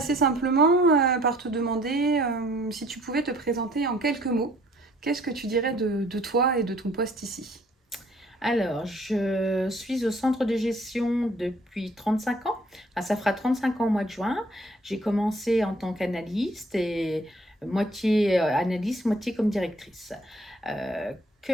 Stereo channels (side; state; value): both; normal; correlation 0.59